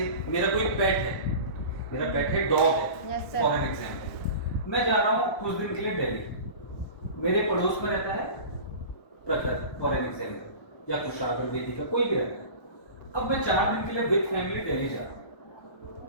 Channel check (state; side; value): late; right; 1.2 ms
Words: मेरा कोई पेट है, डॉग है. फॉर एन एग्जांपल, मैं जा रहा हूँ कुछ दिन के लिए दिल्ली. मेरे पड़ोस में रहता है प्रखर, फॉर एन एग्जांपल, या कुशागर बेदी का कोई भी रहता है. अब मैं 4 दिन के लिए विद फैमिली दिल्ली जा रहा हूँ.